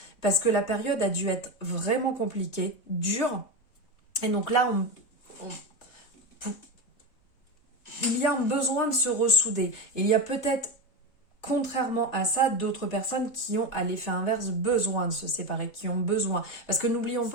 parce que la période a dû être vraiment compliquée, dure. Et donc là, il y a un besoin de se ressouder. Il y a peut-être, contrairement à ça, d'autres personnes qui ont, à l'effet inverse, besoin de se séparer, qui ont besoin. Parce que n'oublions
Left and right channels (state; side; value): late; right; 3.6 ms